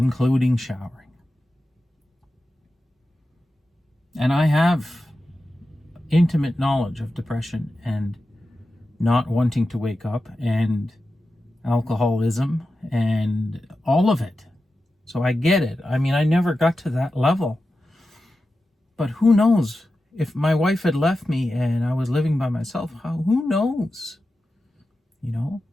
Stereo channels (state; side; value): normal; both; correlation 0.92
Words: showering. And I have intimate knowledge of depression and not wanting to wake up and alcoholism and all of it. So I get it. I mean, I never got to that level. But who knows? If my wife had left me and I was living by myself, who knows?